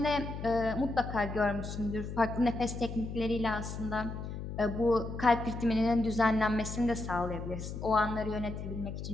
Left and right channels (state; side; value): noise; left; hum, 7 dB below the sound